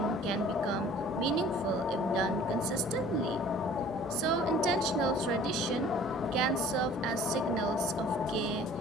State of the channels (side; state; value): both; normal; correlation 0.50